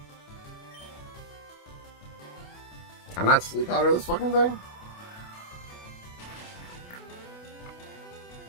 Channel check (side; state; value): right; late; 28 ms